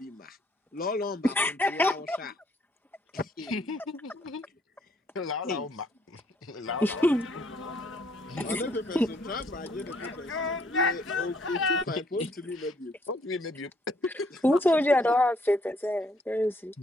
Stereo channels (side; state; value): both; normal; correlation 0.67